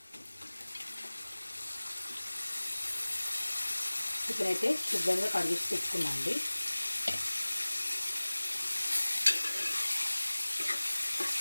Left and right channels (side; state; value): both; inverted; correlation -1.00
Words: చికెన్ అయితే శుభ్రంగా కడిగేసి పెట్టుకున్నా అండి.